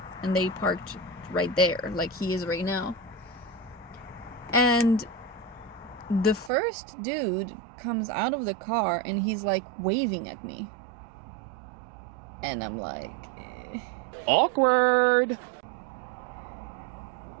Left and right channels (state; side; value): drops out; left; at 6.5 s